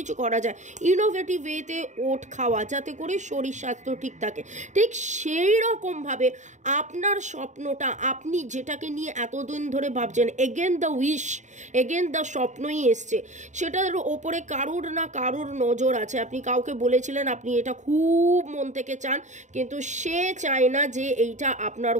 করা যায় ইনোভেটিভ ওয়েতে ওট খাওয়া, যাতে করে শরীর স্বাস্থ্য ঠিক থাকে। ঠিক সেই রকমভাবে আপনার স্বপ্নটা, আপনি যেটাকে নিয়ে এতদিন ধরে ভাবছেন, again the wish, again the স্বপ্নই এসছে, সেটার ওপরে কারুর না কারুর নজর আছে। আপনি কাউকে বলেছিলেন আপনি এটা খুব মন থেকে চান, কিন্তু সে চায় না যে এইটা আপনার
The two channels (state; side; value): late; left; 0.35 ms